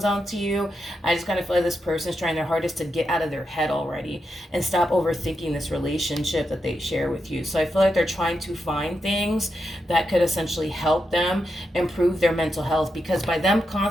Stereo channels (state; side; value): normal; both; correlation 0.85